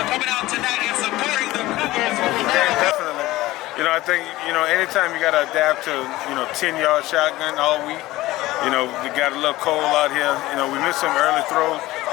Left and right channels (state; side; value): quieter; right; 17.7 dB